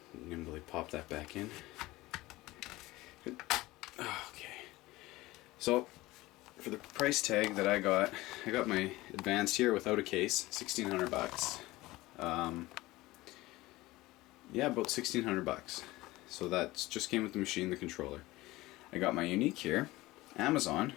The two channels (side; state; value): right; quieter; 19.1 dB